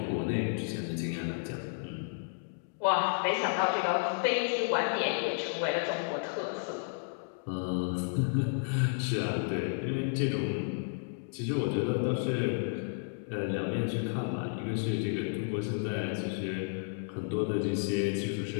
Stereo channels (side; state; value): right; silent; digital silence